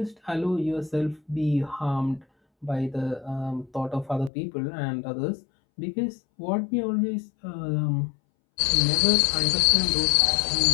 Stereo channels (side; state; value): right; drops out; at 4.3 s